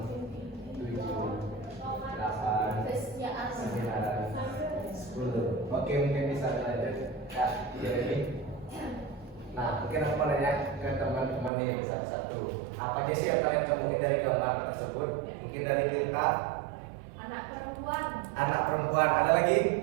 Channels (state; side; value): drops out; left; at 11.5 s